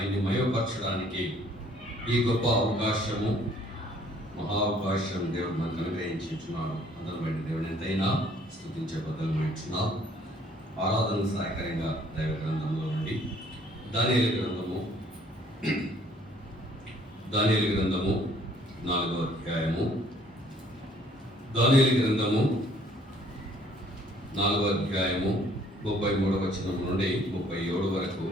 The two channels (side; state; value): both; normal; correlation 0.60